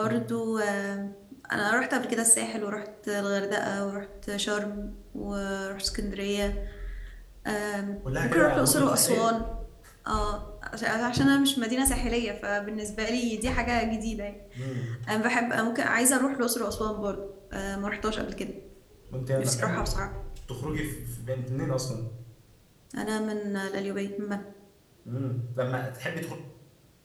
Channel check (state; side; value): identical; both; correlation 1.00